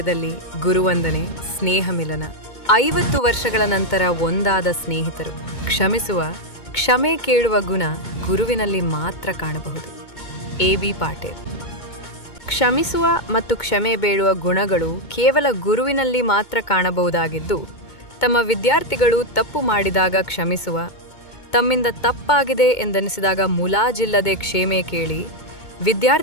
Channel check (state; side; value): late; right; 2.2 ms